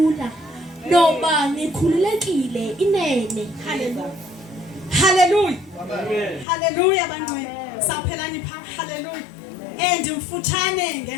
noba nikhululekile inene. Hallelujah. Hallelujah. Hallelujah bangcwele. Saphelani pha. Hallelujah. Ndimfutshane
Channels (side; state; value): right; drops out; at 6.5 s